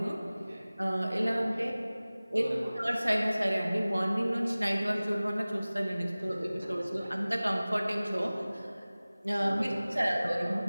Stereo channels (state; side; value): inverted; both; correlation -0.98